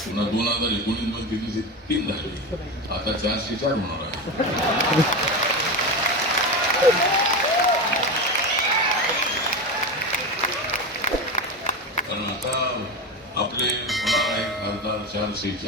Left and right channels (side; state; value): both; normal; correlation 0.20